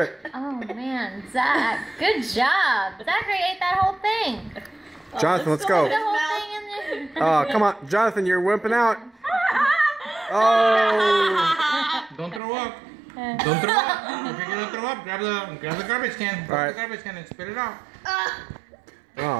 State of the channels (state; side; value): drops out; left; at 12.4 s